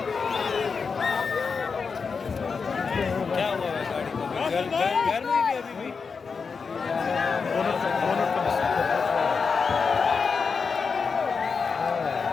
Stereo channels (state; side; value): quieter; right; 5.3 dB